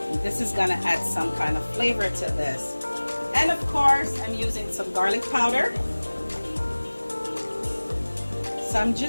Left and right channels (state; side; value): inverted; both; correlation -1.00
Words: This is gonna add some kind of flavor to this. And of course, I'm using some garlic powder. So I'm